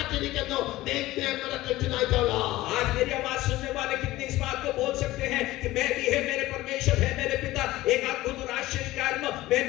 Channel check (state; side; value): quieter; right; 17.2 dB